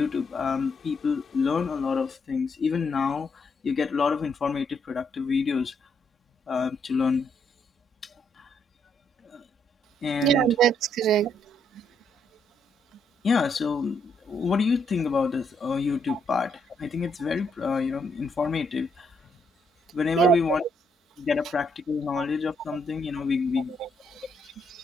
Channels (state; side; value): normal; both; correlation 0.74